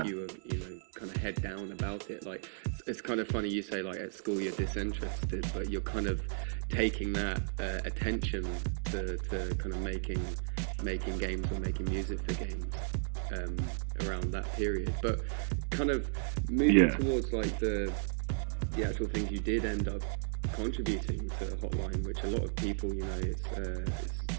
You were, you know, kind of head down about it. Like, it's kind of funny you say like at school you're disinterested, but you're kind of taking that attention to kind of making games or making music for games around that period. But kind of moving towards like the actual things you did end up contributing to Hotline, which a lot of people, you know, it's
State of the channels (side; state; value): left; silent; digital silence